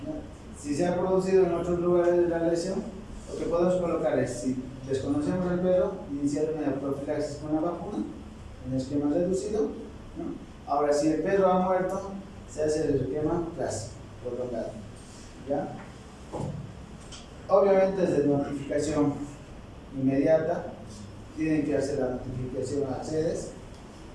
¿ya? Si se ha producido en otros lugares de la lesión, lo que podemos colocar es, si desconocemos el perro, iniciar una profilaxis con la vacuna en esquema reducido, ¿no? Ahora, si el perro ha muerto, se hace el esquema clásico, prolongado, ¿ya? Obviamente es de notificación inmediata, tienen que hacer la notificación a sedes,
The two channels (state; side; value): identical; both; correlation 1.00